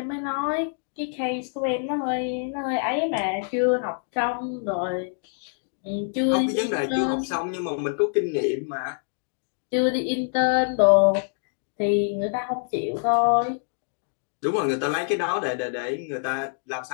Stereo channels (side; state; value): right; silent; digital silence